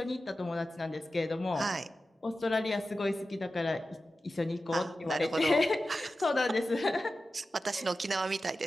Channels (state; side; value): normal; both; correlation 0.93